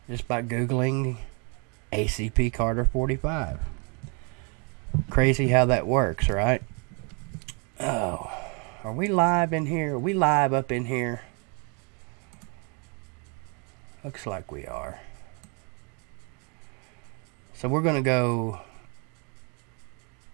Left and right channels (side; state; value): left; quieter; 34.8 dB